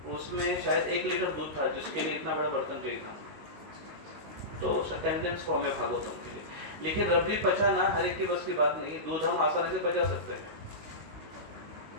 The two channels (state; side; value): late; left; 19 ms